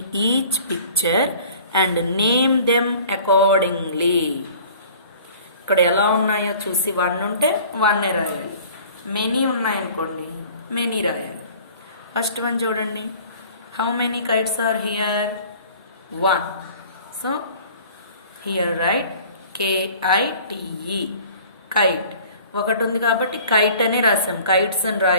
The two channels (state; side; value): inverted; both; correlation -0.48